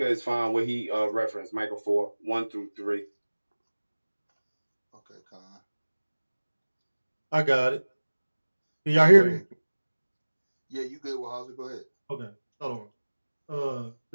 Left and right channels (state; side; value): inverted; both; correlation -1.00